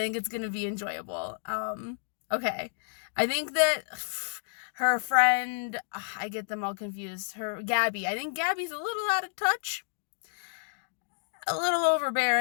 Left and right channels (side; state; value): right; silent; digital silence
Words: it's gonna be enjoyable. Okay. I think that her friend, I get them all confused. Her Gabby. I think Gabby's a little out of touch, a little